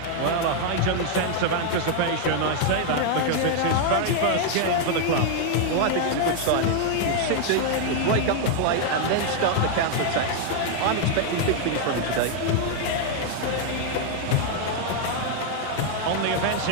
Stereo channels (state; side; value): different; both; correlation 0.00